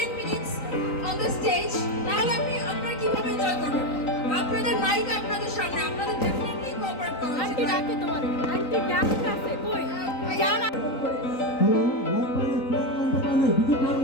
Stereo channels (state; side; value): late; right; 3.9 ms